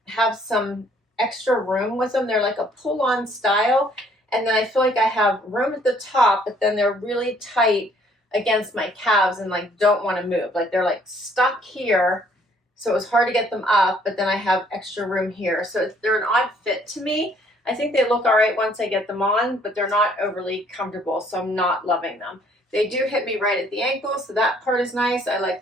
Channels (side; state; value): both; normal; correlation 0.62